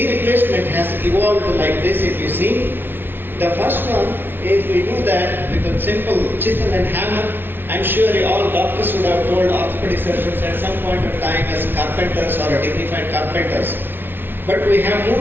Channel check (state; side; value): late; left; 0.10 ms